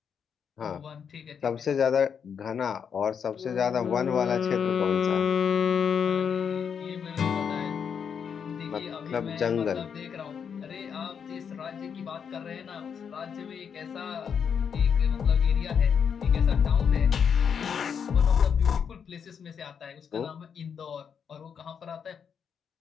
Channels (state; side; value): quieter; right; 7.1 dB